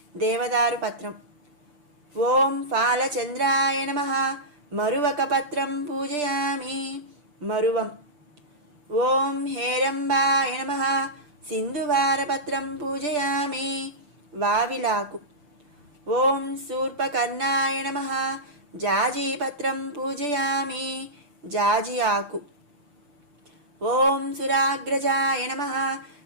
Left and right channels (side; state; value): left; late; 6.8 ms